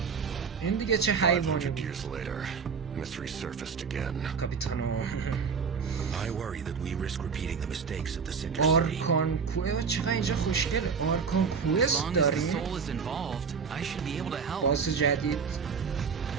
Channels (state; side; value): quieter; left; 5.9 dB